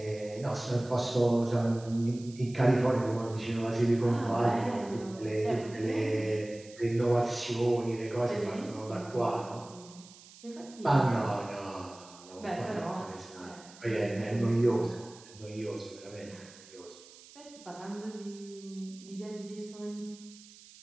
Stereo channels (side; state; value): right; noise; hiss, 21 dB below the sound